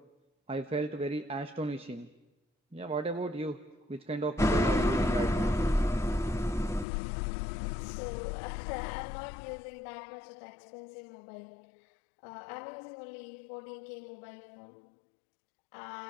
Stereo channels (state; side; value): drops out; right; at 6.9 s